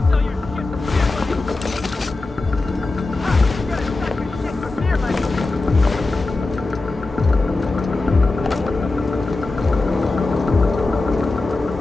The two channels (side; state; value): right; quieter; 3.3 dB